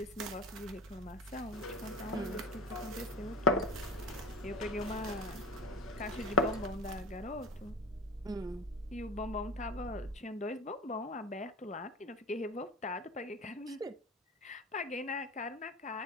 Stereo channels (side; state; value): both; normal; correlation 0.31